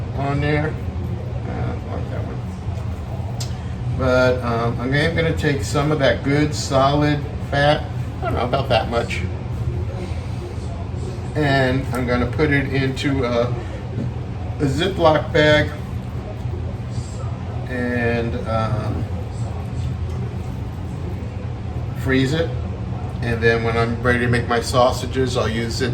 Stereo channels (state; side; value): identical; both; correlation 1.00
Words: on there. But I'm going to take some of that good solid fat, I don't know, about that much, and I'm going to put it into a Ziploc bag and freeze it. And then when I'm ready to make my sausages, I'll use it